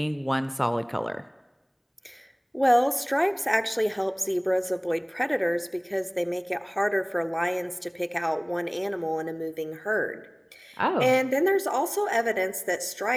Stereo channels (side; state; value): both; identical; correlation 1.00